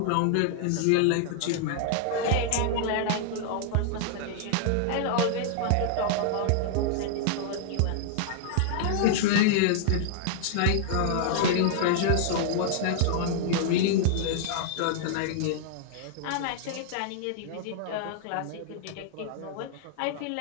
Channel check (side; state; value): both; different; correlation -0.01